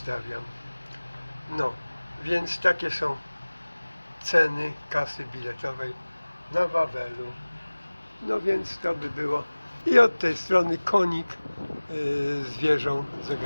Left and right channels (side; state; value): both; inverted; correlation -1.00